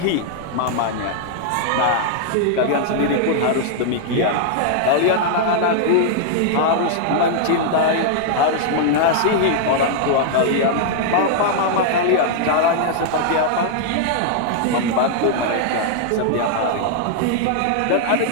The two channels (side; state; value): both; different; correlation -0.01